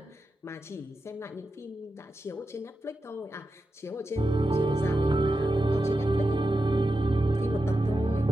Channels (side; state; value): both; normal; correlation 0.90